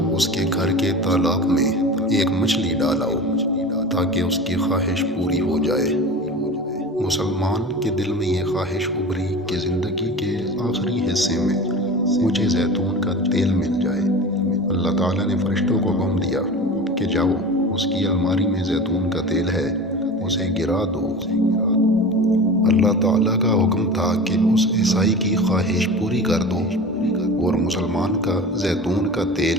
اس کے گھر کے تالاب میں ایک مچھلی ڈالاؤ تاکہ اس کی خواہش پوری ہو جائے۔ مسلمان کے دل میں یہ خواہش ابھری کہ زندگی کے آخری حصے میں مجھے زیتون کا تیل مل جائے۔ اللہ تعالیٰ نے فرشتوں کو حکم دیا کہ جاؤ اس کی الماری میں زیتون کا تیل ہے، اسے گرا دو۔ اللہ تعالیٰ کا حکم تھا کہ اس عیسائی کی خواہش پوری کر دو اور مسلمان کا زیتون کا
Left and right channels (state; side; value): normal; both; correlation 0.33